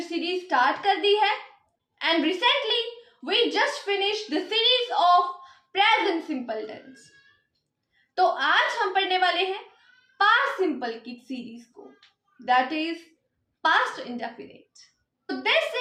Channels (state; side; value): identical; both; correlation 1.00